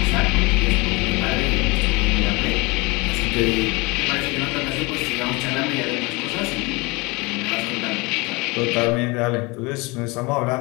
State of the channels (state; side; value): quieter; right; 25.8 dB